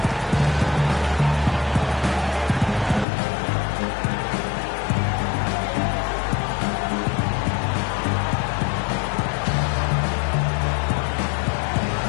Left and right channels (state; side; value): drops out; right; at 3.1 s